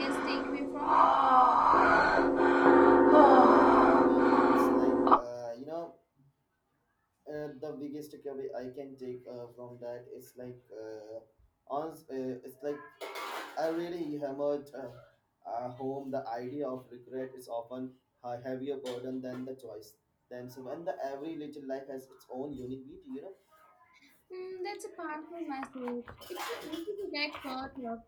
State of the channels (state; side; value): identical; both; correlation 1.00